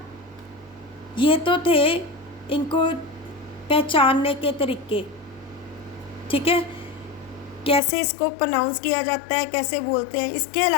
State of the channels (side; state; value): right; drops out; at 7.8 s